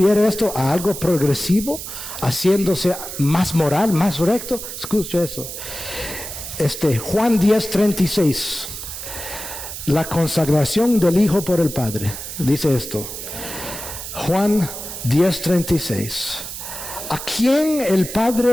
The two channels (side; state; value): right; noise; hiss, 9 dB below the sound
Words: a algo progresivo, haciéndose más moral, más recto? Escucha eso. Juan 10:36, la consagración del Hijo por el Padre. Dice esto. Juan 10:36. ¿A quién el